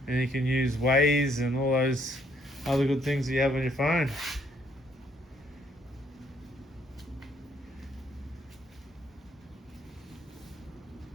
And you can use Waze and all those other good things that you have on your phone.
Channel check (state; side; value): normal; both; correlation 0.68